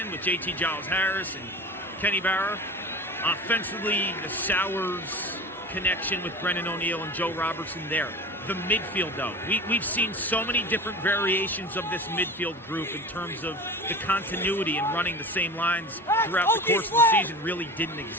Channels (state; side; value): normal; both; correlation 0.33